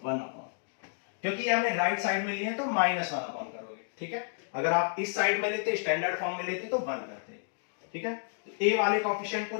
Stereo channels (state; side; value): silent; right; digital silence